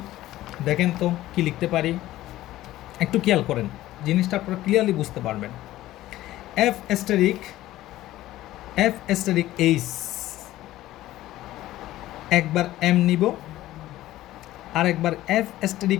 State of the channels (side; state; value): right; quieter; 15.3 dB